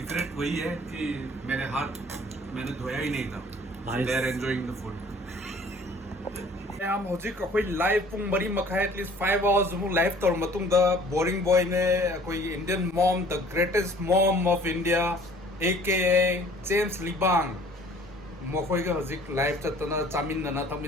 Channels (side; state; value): both; normal; correlation 0.52